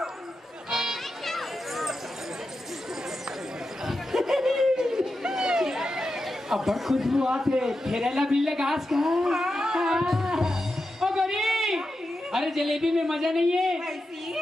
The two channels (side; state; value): both; normal; correlation 0.89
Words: अब बड़ खुशबू आते फेरेला बिल्ले घास का। ओ गौरी, अरे जलेबी में मजा नहीं है, ऐसी?